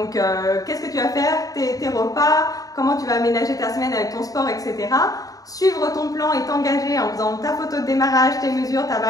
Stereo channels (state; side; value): late; right; 0.17 ms